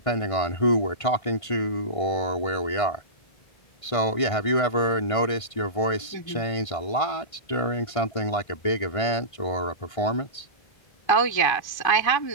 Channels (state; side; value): late; right; 1.5 ms